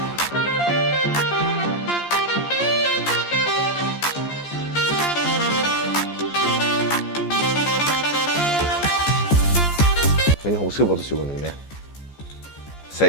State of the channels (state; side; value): late; right; 14 ms